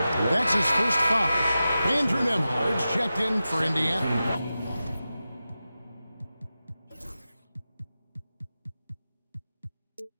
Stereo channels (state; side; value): inverted; both; correlation -0.93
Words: That's his first foul. Andrew Nembhard's checked in for Indiana.